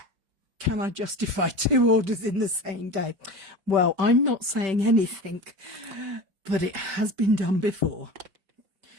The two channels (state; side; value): late; left; 5.2 ms